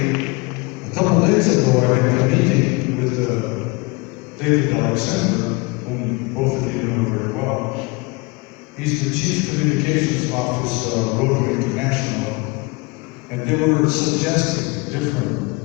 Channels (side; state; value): right; quieter; 26.7 dB